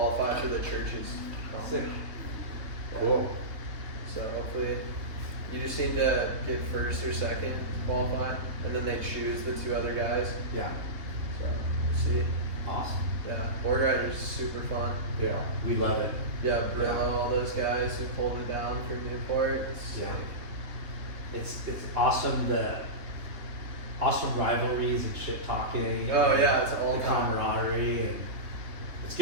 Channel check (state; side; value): late; left; 3.4 ms